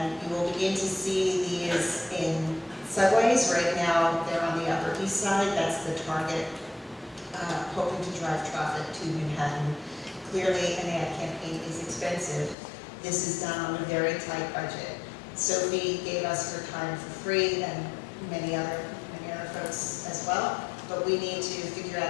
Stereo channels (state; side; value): drops out; right; at 12.6 s